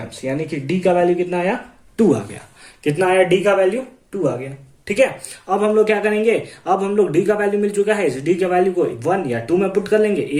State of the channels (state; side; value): identical; both; correlation 1.00